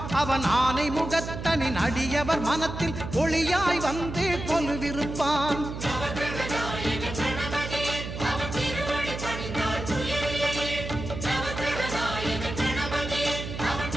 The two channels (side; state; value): right; noise; hum, 7 dB below the sound